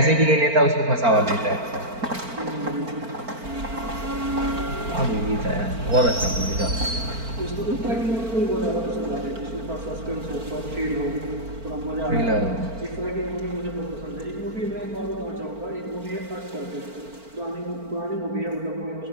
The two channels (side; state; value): left; late; 4.4 ms